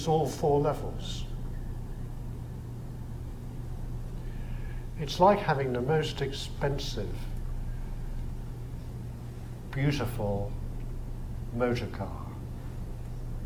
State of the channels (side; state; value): both; identical; correlation 1.00